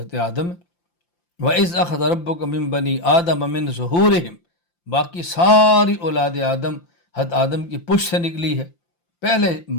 آدم ہے۔ وَإِذْ أَخَذَ رَبُّكَ مِن بَنِي آدَمَ مِن ظُهُورِهِمْ، باقی ساری اولاد آدم حضرت آدم کی پشت سے نکلی ہے۔ پہلے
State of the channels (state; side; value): late; right; 5.8 ms